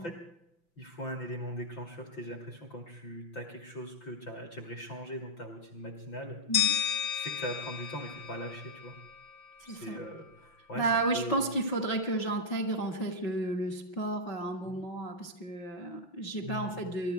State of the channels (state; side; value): late; right; 5.9 ms